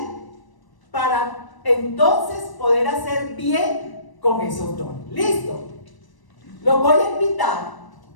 para entonces poder hacer bien con esos dones. ¿Listo? Los voy a invitar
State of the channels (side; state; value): right; late; 1.0 ms